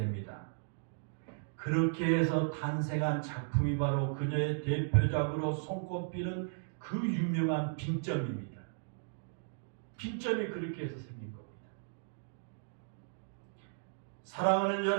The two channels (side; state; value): left; silent; digital silence